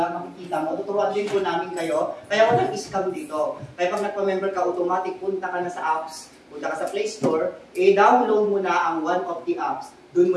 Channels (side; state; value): both; identical; correlation 1.00